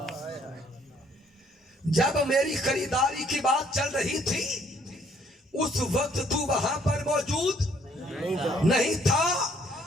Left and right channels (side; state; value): both; normal; correlation 0.64